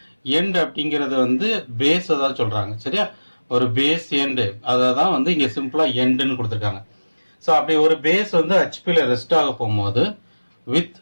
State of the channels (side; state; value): both; inverted; correlation -1.00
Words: எண்ட் அப்படிங்கிறது வந்து பேஸை தான் சொல்கிறாங்க. சரியா ஒரு பேஸ் எண்டு அதை தான் வந்து இங்கே சிம்பிளாக எண்டுன்னு கொடுத்துருக்காங்க. ஸோ அப்படி ஒரு பேஸ் வந்து ஹெச்பியில் ரெஸ்ட் ஆக போகும்போது வித்